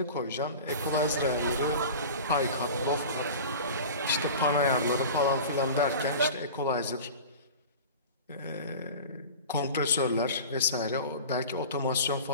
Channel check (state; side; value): inverted; both; correlation -0.35